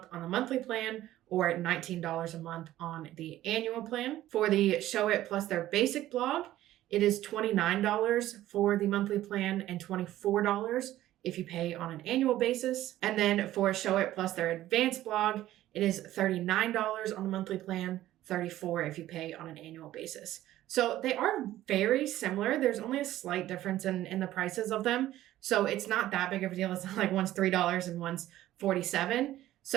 on the monthly plan or $19 a month on the annual plan. For the Showit plus their basic blog, it is $29 for the monthly plan and $24 if you pay on an annual basis. And then for Showit plus their advanced blog, it is $39 on the monthly plan, $34 if you pay on an annual basis. So they are very similar. There's only a slight difference in the prices of them. So it's not that big of a deal. It's not like one's $3 and one's $47.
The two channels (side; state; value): left; quieter; 14.2 dB